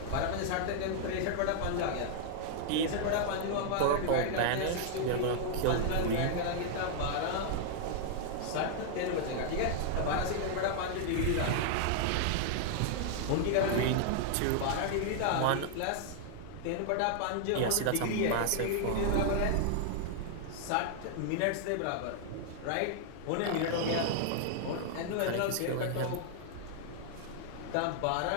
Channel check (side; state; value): both; different; correlation 0.00